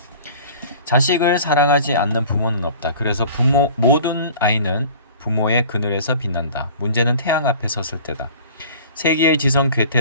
자식을 사랑하지 않는 부모는 없다. 그래서 모든 아이는 부모의 그늘에서 빛난다. 문제는 태양 앞에 섰을 때다. 세기의 지성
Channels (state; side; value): inverted; both; correlation -0.44